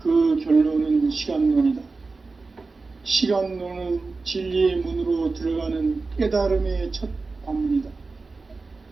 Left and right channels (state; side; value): quieter; left; 3.9 dB